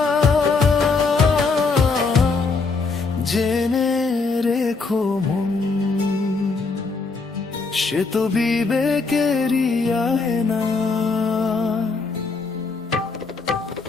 জেনে রেখো মন, সে তো বিবেকেরই আয়না।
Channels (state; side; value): quieter; right; 4.3 dB